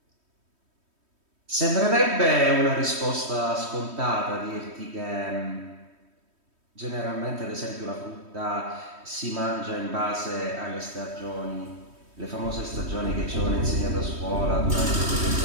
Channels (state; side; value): late; left; 3.1 ms